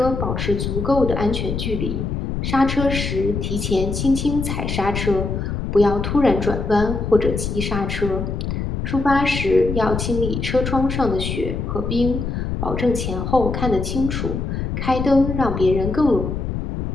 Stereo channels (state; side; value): noise; left; rumble, 3 dB below the sound